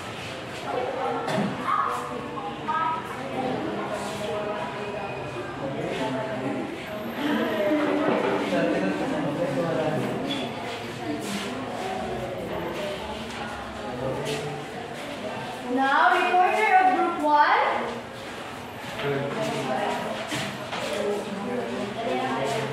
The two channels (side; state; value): both; identical; correlation 1.00